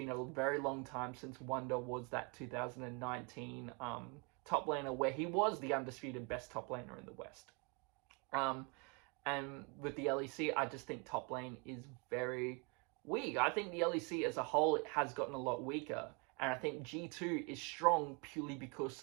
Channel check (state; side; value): quieter; left; 31.5 dB